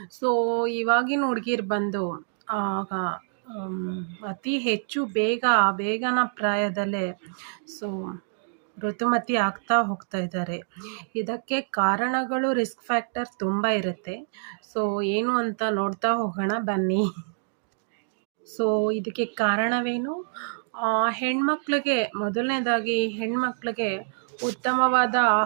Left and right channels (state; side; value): silent; left; digital silence